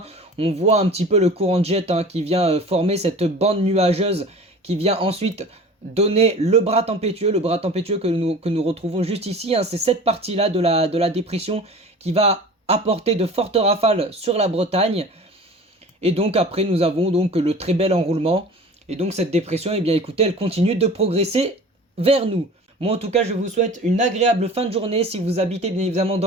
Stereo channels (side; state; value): both; normal; correlation 0.40